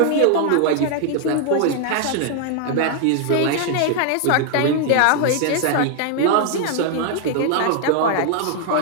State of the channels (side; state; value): both; different; correlation 0.00